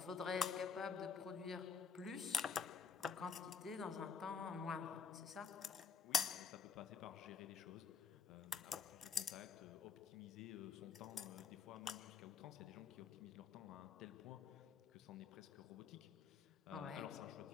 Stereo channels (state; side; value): quieter; right; 6.4 dB